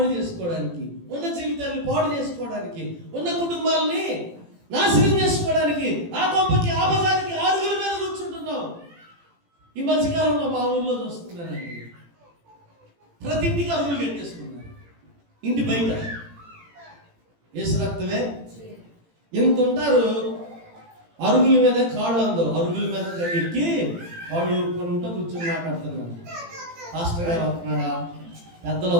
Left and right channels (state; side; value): late; left; 18 ms